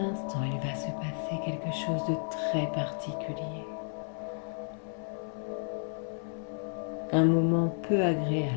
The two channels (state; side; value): silent; right; 56 dB below the other